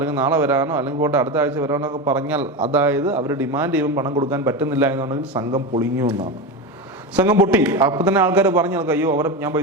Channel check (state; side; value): normal; both; correlation 0.19